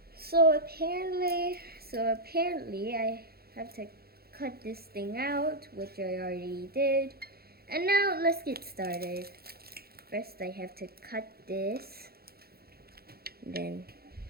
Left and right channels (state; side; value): late; left; 0.45 ms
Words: So apparently I have to cut this thing out, which I already did. And now let's get started. First I have to cut this. Then